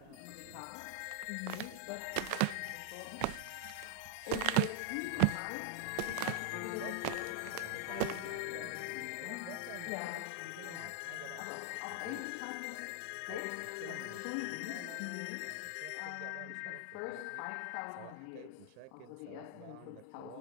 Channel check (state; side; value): different; both; correlation 0.00